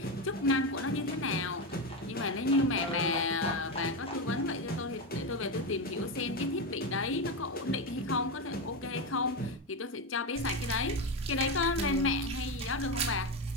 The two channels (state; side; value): normal; both; correlation 0.13